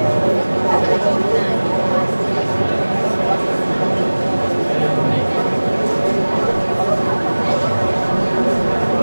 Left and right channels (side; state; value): both; inverted; correlation -1.00